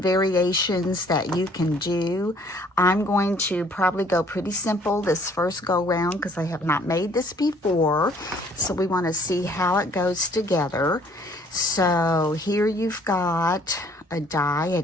variations that you can do. I'm going to probably go pretty simple this first go round because I have not made this before. So we want to see how it goes together. So here you've got a die, an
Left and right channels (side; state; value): both; normal; correlation 0.59